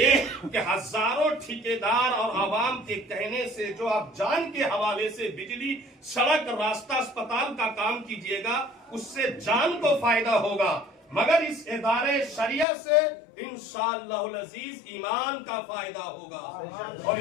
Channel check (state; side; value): drops out; right; at 12.7 s